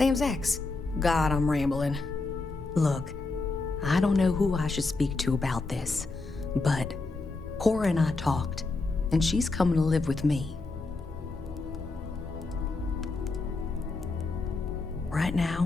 ex. God, I'm rambling. Look, I don't know who I should speak to about this, but Cora and I talked, and she's coming to live with me. Right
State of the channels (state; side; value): quieter; right; 3.5 dB